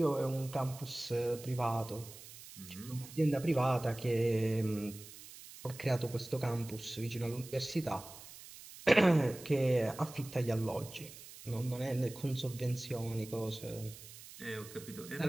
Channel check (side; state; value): right; noise; hiss, 16 dB below the sound